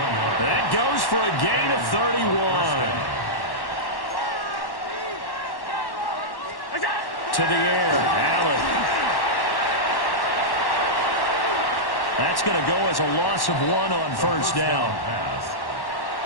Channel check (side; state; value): right; late; 1.1 ms